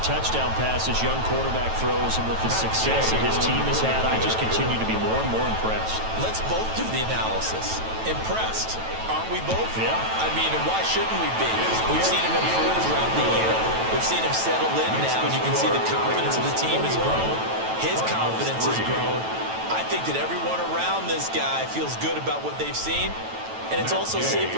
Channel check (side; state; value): left; late; 9.1 ms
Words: touchdown pass his young quarterback throws and with the success that his team has had, I just continue to be more and more impressed. Let's both do the analysis. Impressed, aren't we both? Yeah. I mean, and why shouldn't we be? We've seen him improve throughout the year. We've seen him settle in now, and you can see the confidence of the team has grown. His confidence has grown. I think that everyone around this guy feels good about what they've seen. And it's also safe